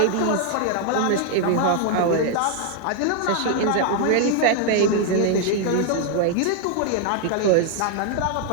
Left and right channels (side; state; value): both; different; correlation 0.00